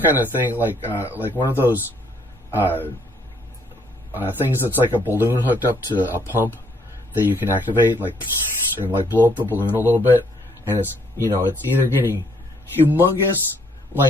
kind of thing like one of those things that's like a balloon hooked up to a pump that you can activate, like, and like blow up the balloon a little bit, and it's, you know, it's either getting humongous,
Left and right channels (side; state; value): both; normal; correlation 0.67